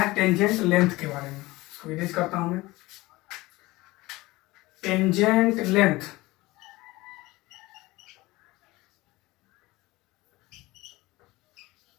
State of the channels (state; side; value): quieter; right; 20.3 dB